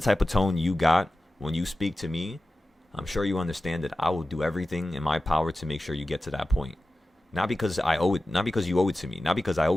type of tone you got when you speak to me, I'm sure you understand that I will do everything in my power to make sure you get to that point. Not because I owe it, not because you owe it to me, not because I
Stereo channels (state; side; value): normal; both; correlation 0.95